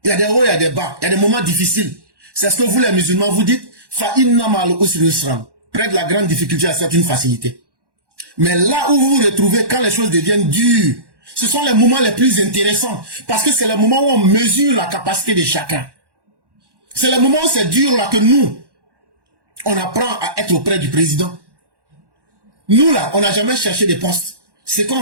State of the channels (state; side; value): late; left; 1.1 ms